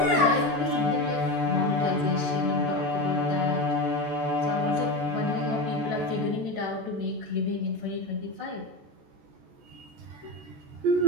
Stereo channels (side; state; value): left; late; 14 ms